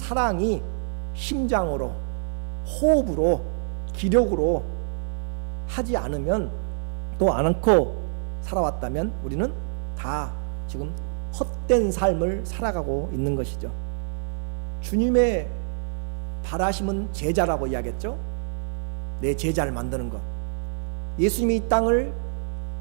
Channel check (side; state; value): left; silent; digital silence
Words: 심장으로, 호흡으로, 기력으로 하지 않으면, 또 안 않고 살아왔다면 우리는 다 지금 헛된 삶을 살아가고 있는 것이죠. 주님의 바라심은 제자라고 이야기했죠. 내 제자를 만드는 것. 예수님이 이 땅을